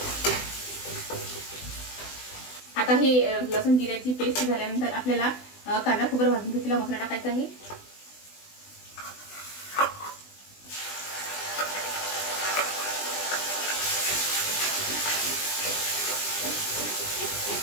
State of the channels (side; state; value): right; late; 20 ms